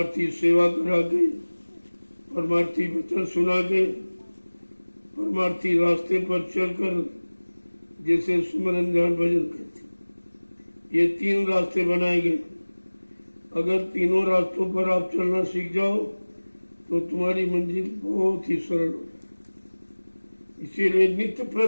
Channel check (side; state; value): both; inverted; correlation -1.00